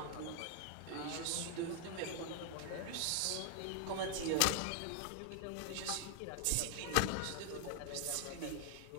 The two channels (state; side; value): different; both; correlation 0.00